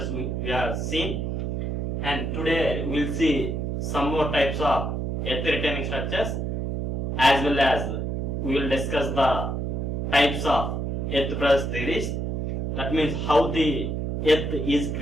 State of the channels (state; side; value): noise; right; hum, 1 dB below the sound